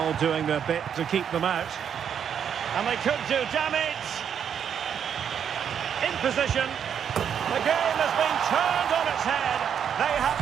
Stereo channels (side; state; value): left; quieter; 8.2 dB